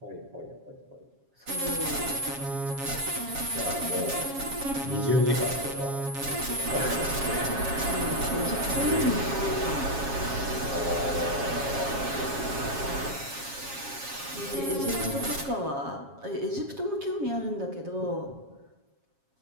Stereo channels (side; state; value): left; late; 7.3 ms